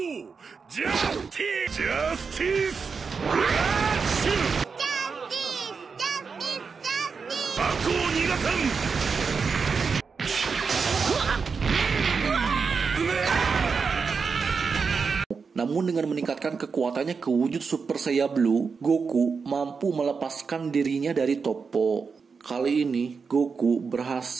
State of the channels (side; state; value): left; quieter; 5.3 dB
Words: Justice! Justice! Justice! Aku nigasan! Namun dengan meningkatkan kekuatannya ke wujud Super Saiyan Blue, Goku mampu melepaskan dirinya dari Toppo. Kali ini, Goku